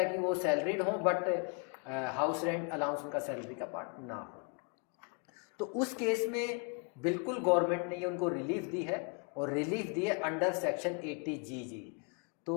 कि वो सैलरीड हो बट हाउस रेंट अलाउंस उनका सैलरी का पार्ट ना हो। तो उस केस में बिल्कुल गवर्नमेंट ने ये उनको रिलीफ दी है, और रिलीफ दिए अंडर सेक्शन 80GG।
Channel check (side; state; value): right; quieter; 36.4 dB